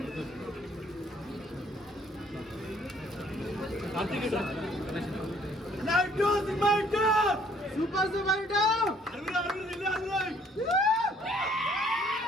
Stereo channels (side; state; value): both; normal; correlation 0.61